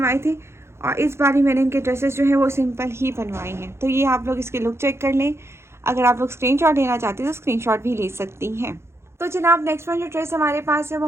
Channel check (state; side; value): late; left; 0.13 ms